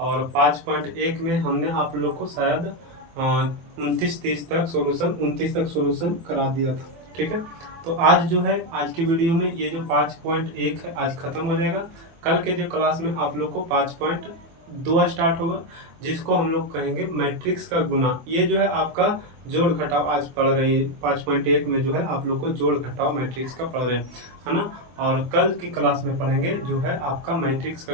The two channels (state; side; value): late; left; 24 ms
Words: 5.1 में हमने आप लोग को शायद 29 तक सोल्यूशन करा दिया था। ठीक है, तो आज जो है, आज की वीडियो में ये जो 5.1 है आज खत्म हो जाएगा। कल के जो क्लास में आप लोग को 5.2 स्टार्ट होगा, जिसको हम लोग कहेंगे मैट्रिक्स का गुना। ये जो है आपका जोड़ घटाव आज पढ़ रहे हैं। 5.1 में जो है आप लोग को जोड़ घटाव मैट्रिक्स का पढ़ रहे हैं, है ना। और कल की क्लास में पढ़ेंगे जो है आपका मैट्रिक्स